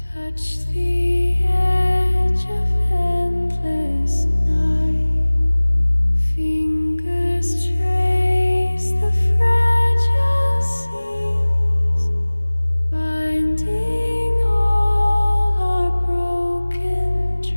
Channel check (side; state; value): both; inverted; correlation -1.00